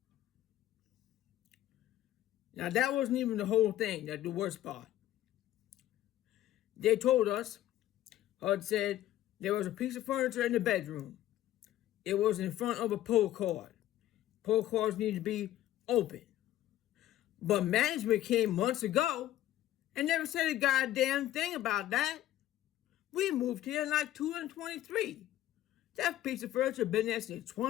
Now that wasn't even the whole thing, that's the worst part. They told us, HUD said, there was a piece of furniture in the bedroom. It was in front of a pull cord. Pull cords need to be open. But management came months ago and never said a goddamn thing about that. We moved here in like 2023. That piece of furniture been there since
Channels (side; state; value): right; quieter; 13.6 dB